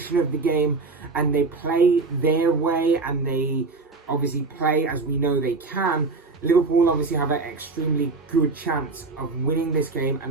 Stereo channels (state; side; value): quieter; left; 3.9 dB